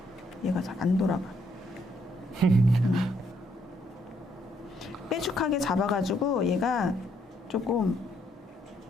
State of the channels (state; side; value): normal; both; correlation 0.72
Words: 얘가 잘 안 돌아가. 빼죽하게 잡아가지고 얘가 조금